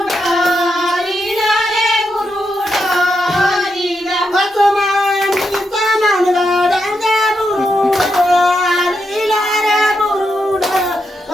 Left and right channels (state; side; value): normal; both; correlation 0.83